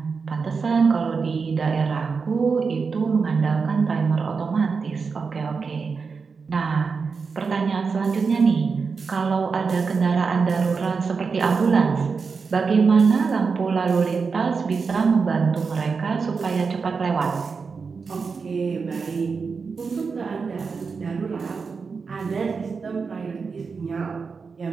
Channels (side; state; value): left; quieter; 5.1 dB